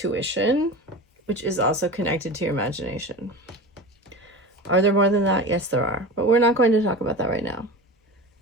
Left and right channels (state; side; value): normal; both; correlation 0.31